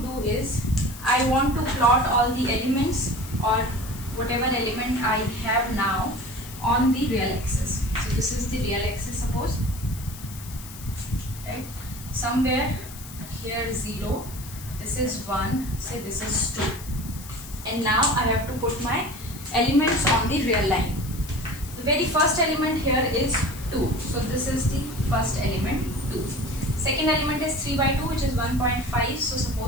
do is I want to plot all the elements or whatever element I have now on the real axis. So this is the real axis, suppose, right? Somewhere here 0, this is 1, say this is 2, and now I have to put my elements on the real line. The very first element here is 2, so this is the first element, 2. Second element is 3 by 2, which is 1.5, so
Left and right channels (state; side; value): noise; left; hiss, 15 dB below the sound